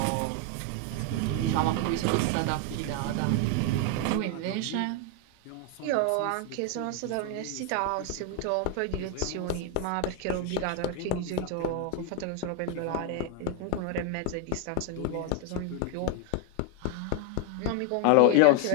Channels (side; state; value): both; different; correlation 0.01